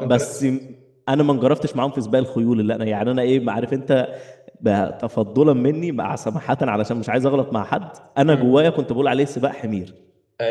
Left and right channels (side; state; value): both; identical; correlation 1.00